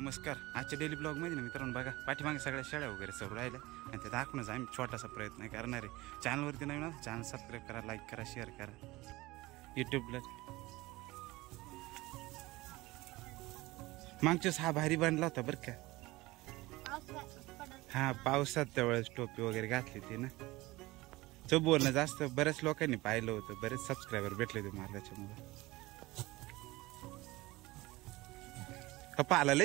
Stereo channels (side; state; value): left; quieter; 20.3 dB